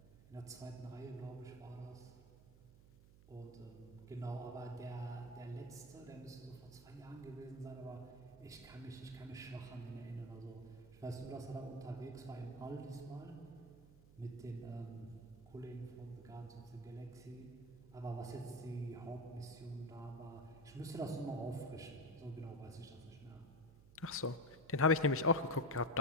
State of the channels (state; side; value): noise; right; hum, 20 dB below the sound